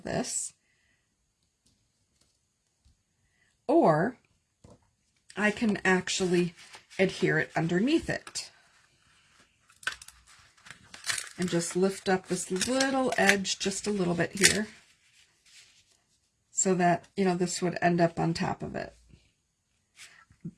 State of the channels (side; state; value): both; identical; correlation 1.00